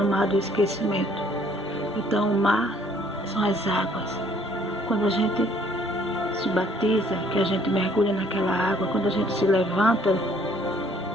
mar do esquecimento. Então o mar são as águas. Quando a gente se batiza, que a gente mergulha naquela água, quando a gente se levanta,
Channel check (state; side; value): normal; both; correlation 0.61